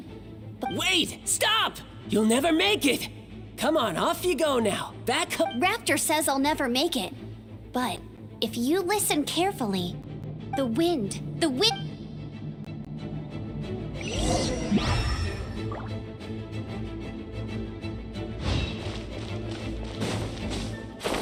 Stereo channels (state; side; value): identical; both; correlation 1.00